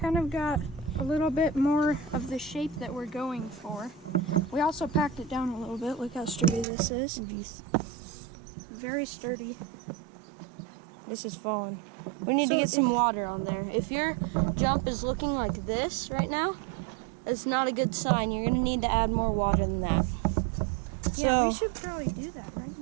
of got a little bit more of the shape that we're going for. We also packed it down a little bit. Look how sturdy this is. Very sturdy. This is falling. We need to get some water on there. If your jump is looking like this right now, it's not a good sign. You're gonna need to add more water than that. Yeah, we should probably do that right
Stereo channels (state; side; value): drops out; left; at 6.7 s